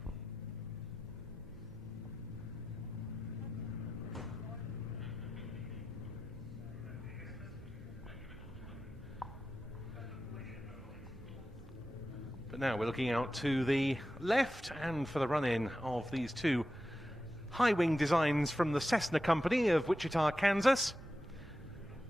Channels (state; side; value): noise; right; hum, 23 dB below the sound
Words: But now we're looking out to the left and for the run-in of these two high-wing designs from the Cessna company of Wichita, Kansas.